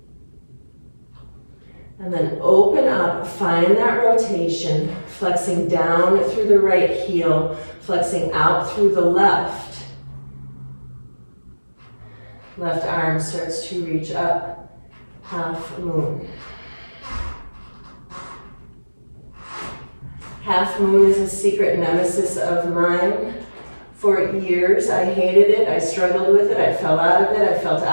And then open up, find that rotation, flexing down through the right heel, flexing out through the left. Left arm starts to reach up, half moon. Half moon is a secret nemesis of mine. For years, I hated it, I struggled with it, I fell out of it, I felt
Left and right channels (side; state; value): both; inverted; correlation -1.00